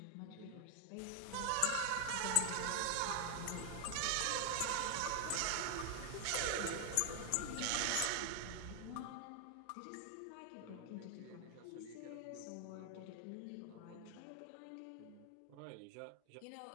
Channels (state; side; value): different; both; correlation 0.00